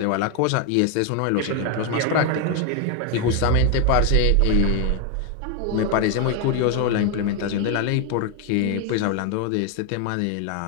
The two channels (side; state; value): both; different; correlation 0.01